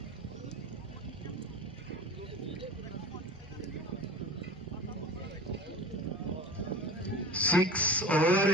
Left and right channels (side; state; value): both; normal; correlation 0.34